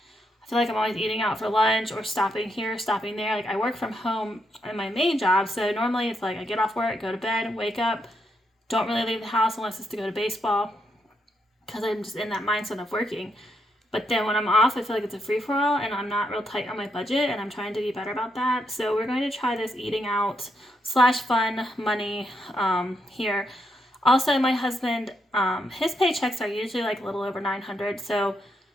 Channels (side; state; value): both; normal; correlation 0.80